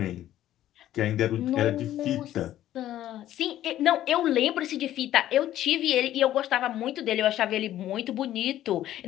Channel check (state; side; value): quieter; right; 12.8 dB